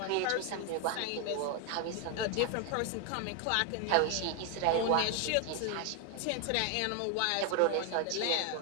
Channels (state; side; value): different; both; correlation 0.01